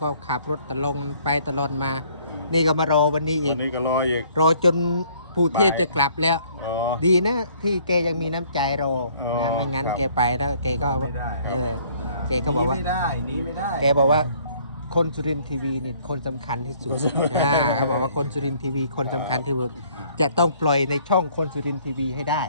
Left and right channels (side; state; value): both; inverted; correlation -0.60